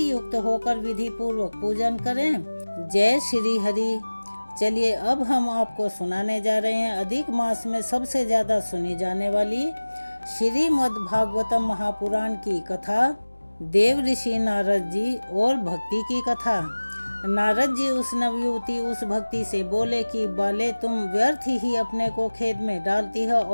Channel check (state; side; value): inverted; both; correlation -1.00